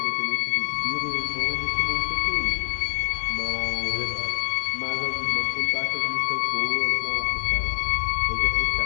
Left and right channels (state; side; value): silent; right; digital silence